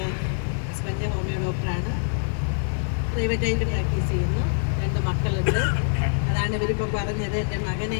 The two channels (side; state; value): right; silent; 62 dB below the other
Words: ഹസ്ബൻഡ് ഹോമിയോ ഡോക്ടറാണ്. പ്രൈവറ്റായിട്ട് പ്രാക്ടീസ് ചെയ്യുന്നു. 2 മക്കളുണ്ട്. അതാണ് ഇവരിപ്പോൾ പറഞ്ഞത്. എൻ്റെ മകനെ